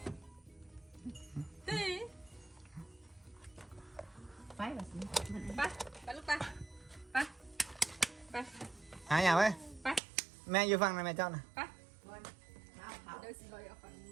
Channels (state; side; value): drops out; left; at 10.0 s